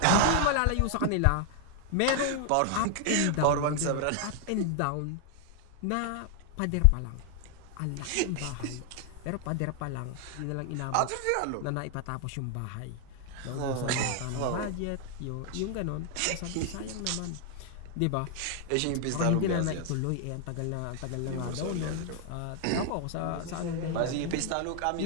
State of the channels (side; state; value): both; different; correlation 0.00